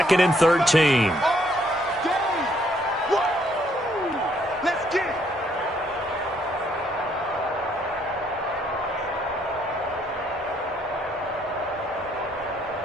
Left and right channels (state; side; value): normal; both; correlation 0.68